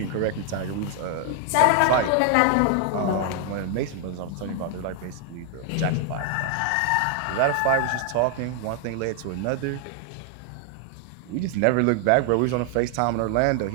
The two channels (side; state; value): both; different; correlation 0.00